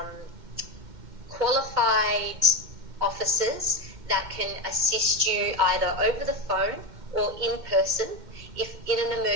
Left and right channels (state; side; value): late; left; 2.1 ms